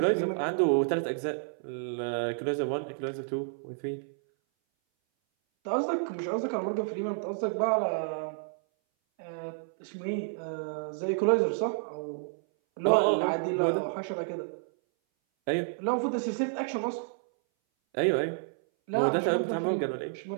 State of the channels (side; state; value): left; silent; 58 dB below the other